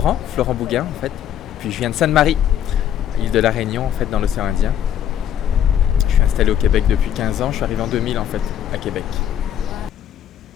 Bouguin en fait. Puis je viens de Sainte-Marie, île de la Réunion en fait, dans l'océan Indien. Je suis installé au Québec depuis 15 ans. Je suis arrivé en 2000 en fait, à Québec.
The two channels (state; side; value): quieter; right; 10.2 dB